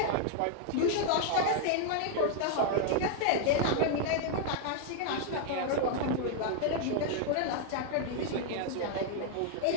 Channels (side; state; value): both; different; correlation 0.00